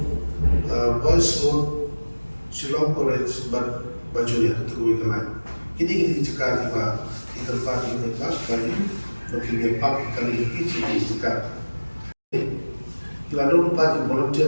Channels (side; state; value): both; inverted; correlation -1.00